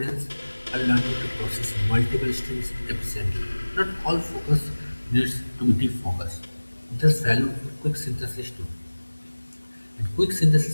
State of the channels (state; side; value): inverted; both; correlation -1.00